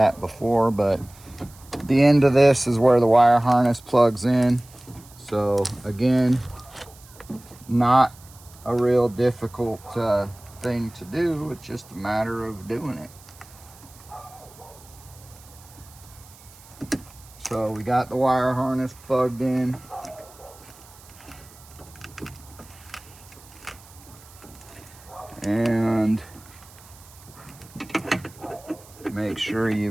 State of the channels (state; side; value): noise; right; hiss, 23 dB below the sound